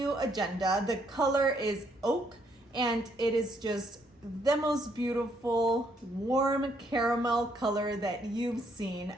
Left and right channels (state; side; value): normal; both; correlation 0.71